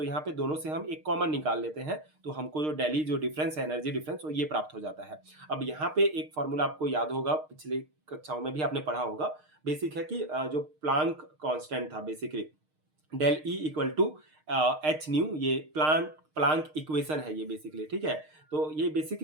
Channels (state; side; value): late; left; 6.5 ms